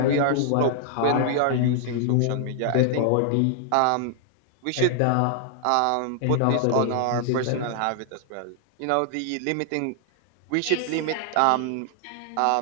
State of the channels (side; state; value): both; different; correlation 0.00